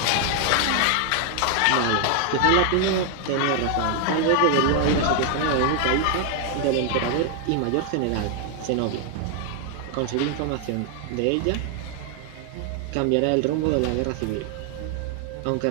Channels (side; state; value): both; different; correlation 0.00